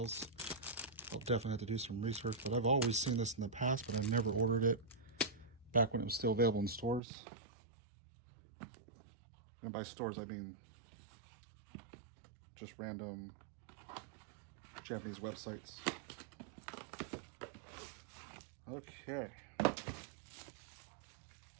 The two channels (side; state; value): left; drops out; at 7.0 s